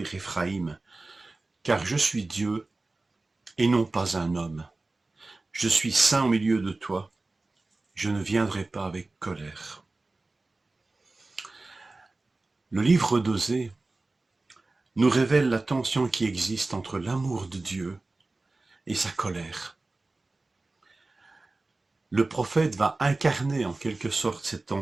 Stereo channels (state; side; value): quieter; left; 3.2 dB